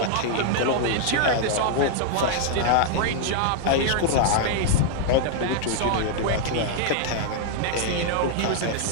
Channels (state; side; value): different; both; correlation 0.00